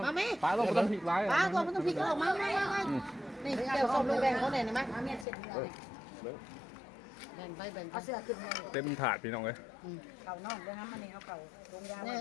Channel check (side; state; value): right; drops out; at 5.2 s